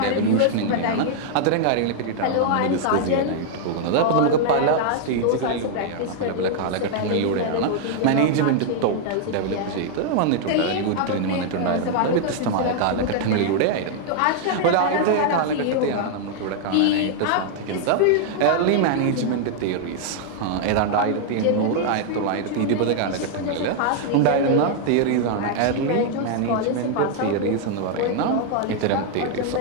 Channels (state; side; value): different; both; correlation 0.00